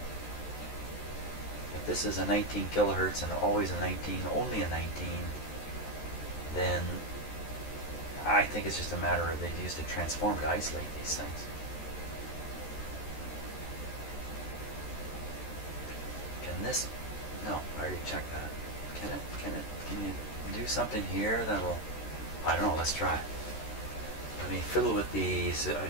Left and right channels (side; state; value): right; late; 13 ms